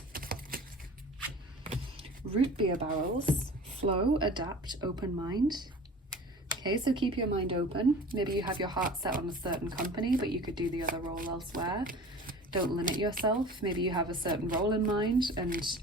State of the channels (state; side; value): normal; both; correlation 0.41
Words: Root beer barrels. Flow, adapt, open mind. Okay, so keep your mind open. Maybe you have your heart set on a certain company, but you could do the other role elsewhere. Don't limit yourself. Maybe you have a certain role in mind and,